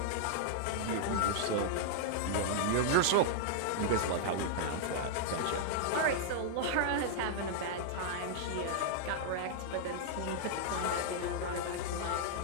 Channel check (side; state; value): both; different; correlation -0.01